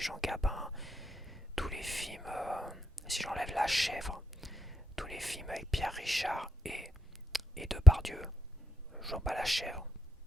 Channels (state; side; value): normal; both; correlation 0.76